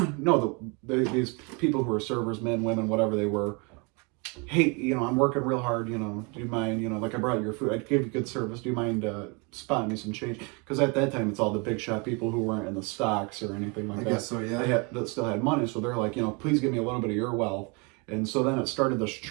No, these people who were servers, men, women, whatever they were. Hey, I'm working real hard. Do you mind? Like I brought you your food. I gave you good service. Do you mind spotting me some change? Because at that time, it's all the big shot people who weren't in the stocks or anything like I that. guess so, yeah. That still had money, so they're like, please give me a little bit of your wealth. And so then it started this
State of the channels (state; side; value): quieter; left; 31.1 dB